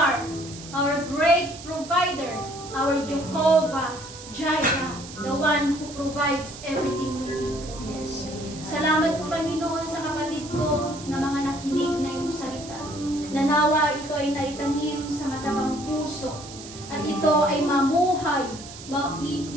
our great provider, our Jehovah Jireh, the one who provides everything we need. Yes. Salamat po, Panginoon, sa kapatid ko na mga nakinig na iyong salita. Nanawa ito ay naitanim sa matabang puso at ito ay mamuhay buhay.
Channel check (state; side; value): noise; right; hiss, 15 dB below the sound